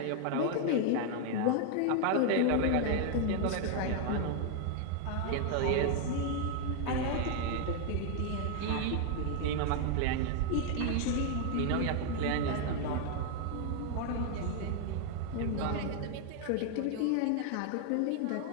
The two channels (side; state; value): both; different; correlation 0.00